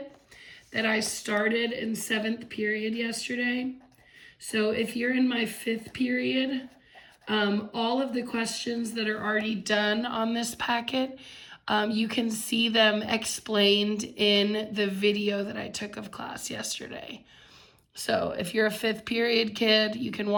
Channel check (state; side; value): identical; both; correlation 1.00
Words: that I started in 7th period yesterday. So if you're in my 5th period, all of the questions that are already done on this packet, you can see them explained in the video that I took of class yesterday. So if you're a 5th period kid, you can